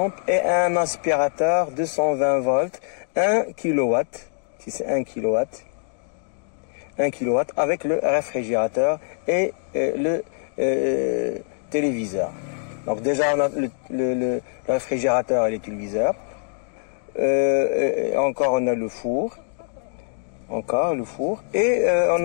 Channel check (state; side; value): silent; right; digital silence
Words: et un aspirateur 220 volts, 1 kW, si c'est 1 kW, 1 kW avec le réfrigérateur et le téléviseur. Donc déjà on a le réfrigérateur et le téléviseur. Encore on a le four. Encore le four. Et